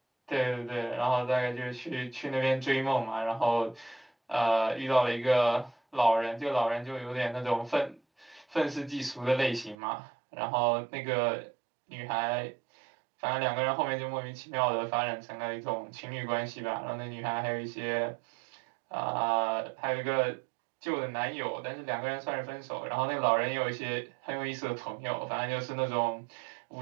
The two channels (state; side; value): drops out; left; at 9.8 s